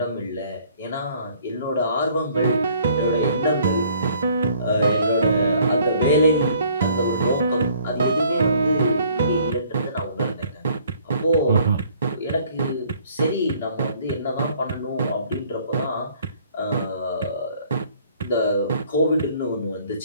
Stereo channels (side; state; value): both; inverted; correlation -0.59